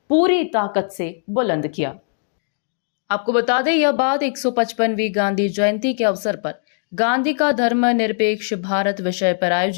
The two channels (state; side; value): silent; right; digital silence